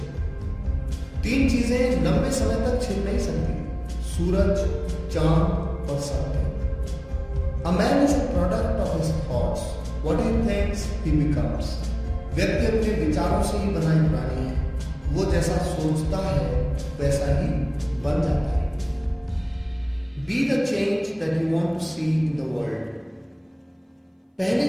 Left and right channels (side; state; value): both; identical; correlation 1.00